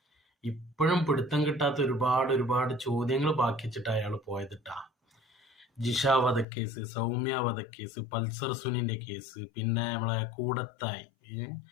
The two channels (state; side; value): drops out; right; at 6.5 s